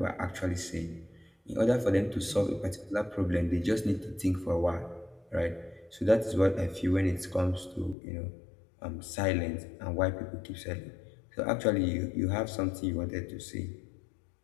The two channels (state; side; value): drops out; right; at 8.0 s